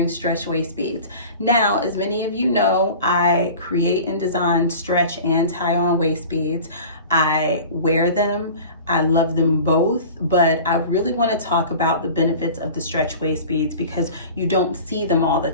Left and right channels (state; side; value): inverted; both; correlation -0.39